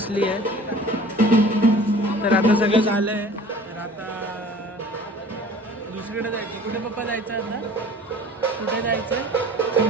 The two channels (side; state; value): both; normal; correlation 0.46